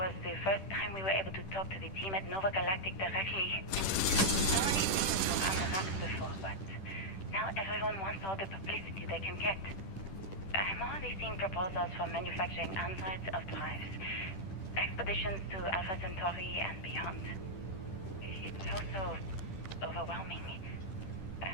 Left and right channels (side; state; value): right; late; 10 ms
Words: the first time we were able to talk to the team at Nova Galactic directly. Only things were on the rocks before, but now everyone wants all the publicity they can get. I'm already seeing proposals for manufacturing androids of drives, expeditions to Alpha Centauri and beyond. It's also overwhelming